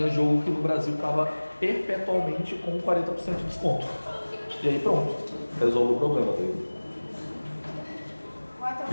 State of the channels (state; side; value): inverted; both; correlation -1.00